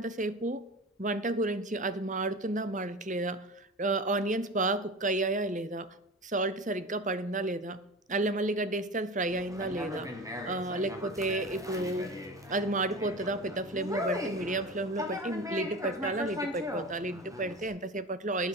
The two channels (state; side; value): normal; both; correlation 0.32